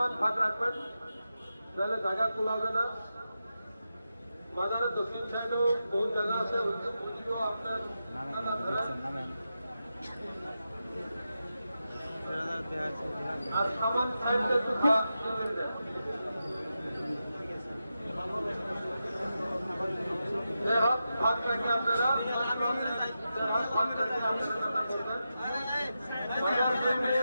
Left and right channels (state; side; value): inverted; both; correlation -0.90